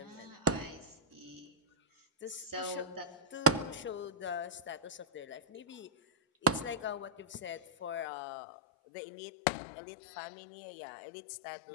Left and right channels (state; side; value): drops out; right; at 8.1 s